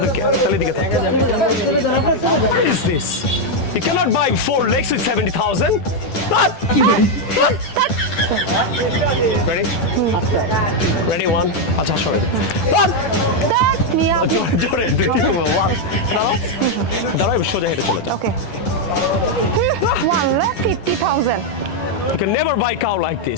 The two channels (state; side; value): late; right; 10 ms